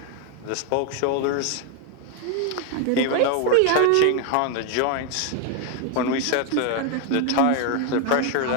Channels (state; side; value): different; both; correlation 0.01